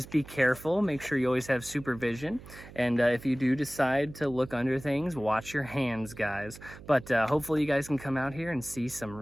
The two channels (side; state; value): right; noise; hum, 17 dB below the sound